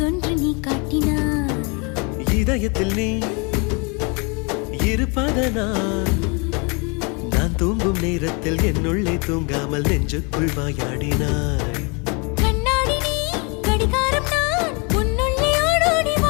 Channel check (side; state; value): right; quieter; 32.4 dB